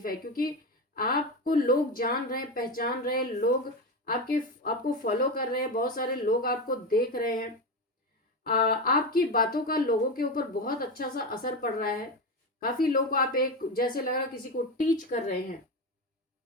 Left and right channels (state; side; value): normal; both; correlation 0.18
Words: है। क्योंकि आपको लोग जान रहे हैं, पहचान रहे हैं, लोग आपको फॉलो कर रहे हैं, बहुत सारे लोग आपको देख रहे हैं। आपकी बातों का लोगों के ऊपर बहुत अच्छा सा असर पड़ रहा है। काफी लोग को आप एक जैसे लग रहा किसी को टीच कर रहे हैं।